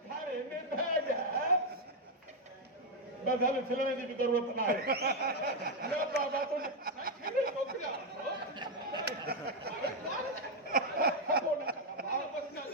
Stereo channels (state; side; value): normal; both; correlation 0.01